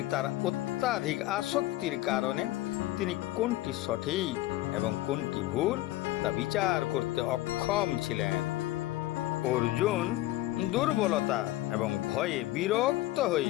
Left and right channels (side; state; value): right; quieter; 16.5 dB